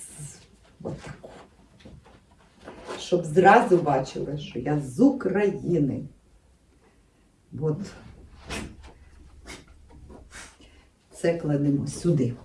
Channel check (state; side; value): identical; both; correlation 1.00